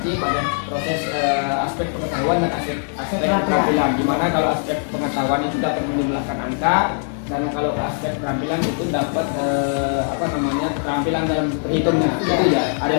pada proses aspek pengetahuan dan aspek keterampilan. Dimana kalau aspek pengetahuan itu dapat menjumlahkan angka, dan kalau aspek keterampilan itu dapat keterampilan dalam berhitungnya. Itu ya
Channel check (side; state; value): right; silent; 63 dB below the other